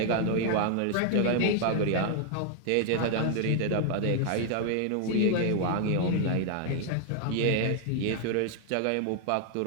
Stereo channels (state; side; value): different; both; correlation 0.00